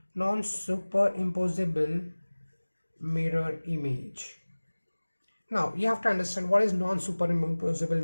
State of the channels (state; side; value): inverted; both; correlation -1.00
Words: non-superimposable mirror image. Now you have to understand what is non-superimposable